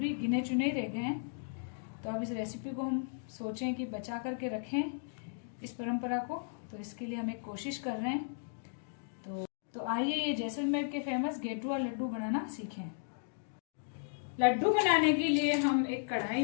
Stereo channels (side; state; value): right; silent; digital silence